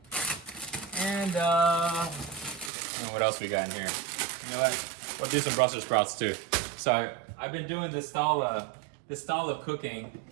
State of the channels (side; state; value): left; drops out; at 2.7 s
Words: And what else we got in here? You know what? We'll do some Brussels sprouts too. So I've been doing this style of cooking